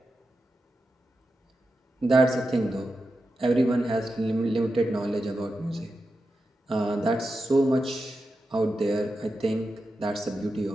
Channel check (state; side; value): normal; both; correlation 0.90